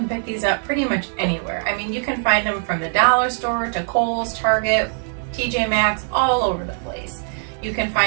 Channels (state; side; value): silent; left; 55 dB below the other